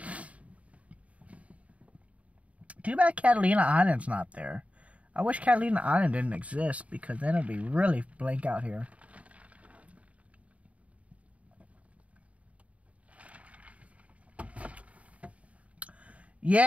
Too bad Catalina Island's not there. I wish Catalina Island didn't exist, because then it'd be really blank out here.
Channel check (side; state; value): left; late; 0.066 ms